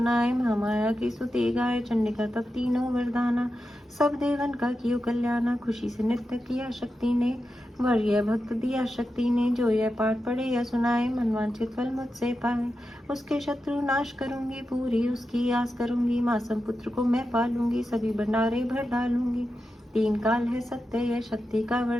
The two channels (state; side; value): normal; both; correlation 0.90